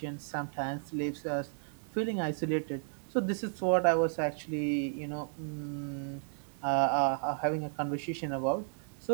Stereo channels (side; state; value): left; silent; 56 dB below the other